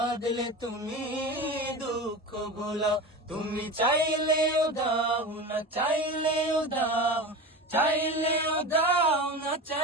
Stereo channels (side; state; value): both; normal; correlation 0.28